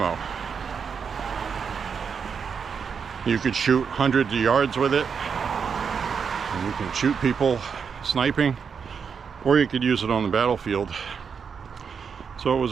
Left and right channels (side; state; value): left; quieter; 6.3 dB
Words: You could shoot hundreds of yards with it. And you can shoot people sniping, or you could use it on the battlefield. So it